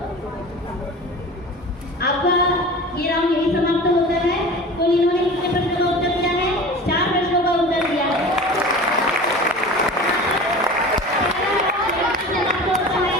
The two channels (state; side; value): normal; both; correlation 0.36